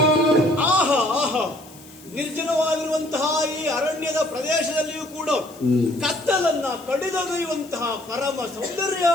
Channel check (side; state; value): left; noise; hiss, 22 dB below the sound